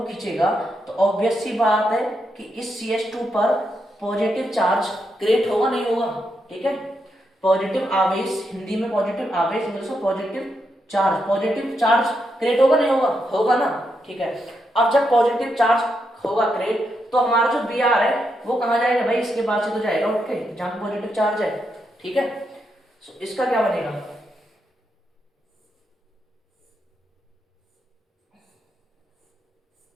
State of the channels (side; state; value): both; normal; correlation 0.82